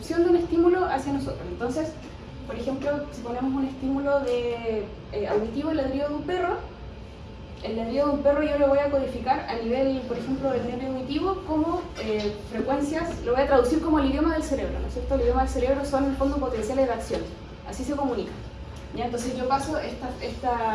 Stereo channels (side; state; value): both; identical; correlation 1.00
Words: de un estímulo hacia nosotros. Entonces, por ejemplo, si ponemos un estímulo auditivo, el ladrido de un perro, el ladrido de un perro yo lo voy a codificar a nivel, por ejemplo, del nervio auditivo como frecuencias, lo voy a traducir como el idioma del cerebro, ¿no es cierto? El idioma del cerebro son en el fondo potenciales de acción, así se comunica. ¿Ya? Entonces yo paso